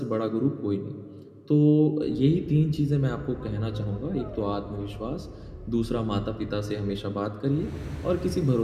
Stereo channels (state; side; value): identical; both; correlation 1.00